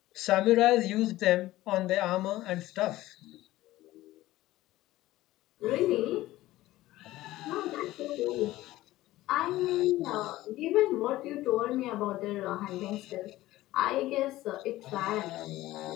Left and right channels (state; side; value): quieter; right; 16.5 dB